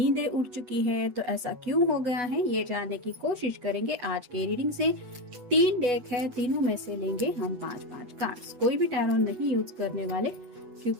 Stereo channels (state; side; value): late; left; 8.1 ms